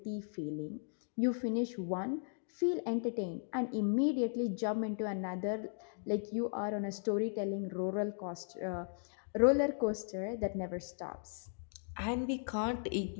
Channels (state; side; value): silent; right; digital silence